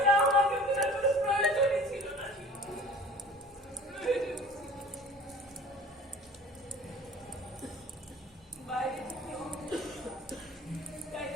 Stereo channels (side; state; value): both; normal; correlation 0.44